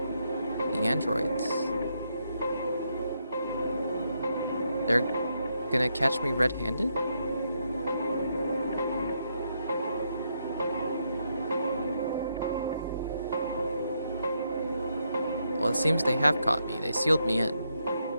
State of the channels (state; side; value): inverted; both; correlation -0.78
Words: The androids. They're gonna catch me red-handed? Well, it seems they have caught me. They sealed me in.